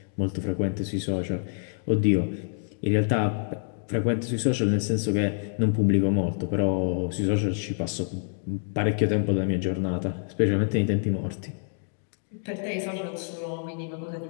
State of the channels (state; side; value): silent; right; digital silence